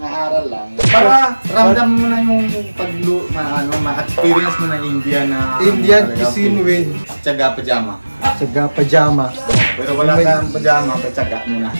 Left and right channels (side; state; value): both; inverted; correlation -1.00